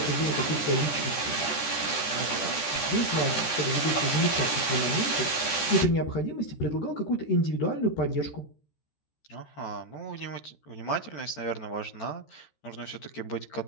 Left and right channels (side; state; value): right; late; 13 ms